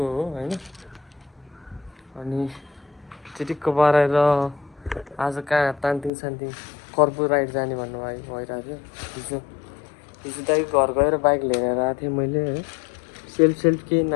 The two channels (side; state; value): right; drops out; at 6.1 s